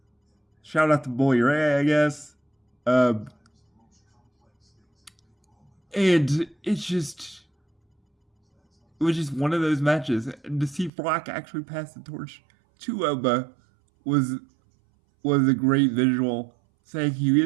Shout out to Bully Ray, I guess. And it was just one of those matches. And to see Brock actually pass the torch to Oba was a great visual, saying he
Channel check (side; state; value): left; drops out; at 10.9 s